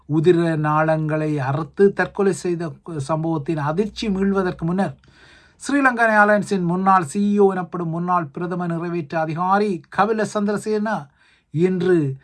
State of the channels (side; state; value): both; identical; correlation 1.00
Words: உதிர நாளங்களை அறுத்து தற்கொலை செய்த சம்பவத்தின் அதிர்ச்சி மீள்வதற்கு முன்னர் ஸ்ரீலங்கா ஏர்லைன்ஸின் முன்னாள் CEO எனப்படும் முன்னாள் பிரதம நிறைவேற்று அதிகாரி கபில சந்திரசேன இன்று